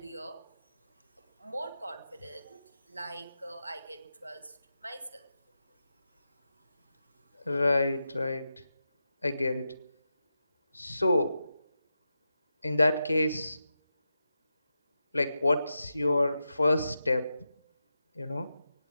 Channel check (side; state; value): both; inverted; correlation -0.89